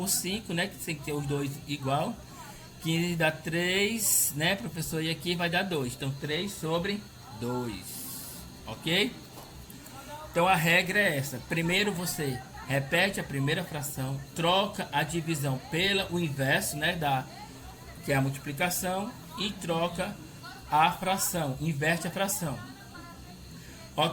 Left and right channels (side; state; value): both; identical; correlation 1.00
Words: 5, né? Que tem que ter os dois igual. 15 dá 3, né, professor? E aqui vai dar 2. Então 3 sobre 2. Ok? Então a regra é essa. Primeiro você repete a primeira fração, troca a divisão pelo inverso, né, que é a multiplicação, e troca a fração, inverte a fração.